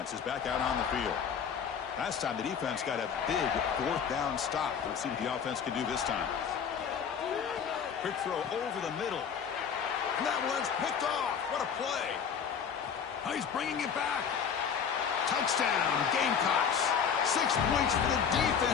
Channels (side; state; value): right; quieter; 7.2 dB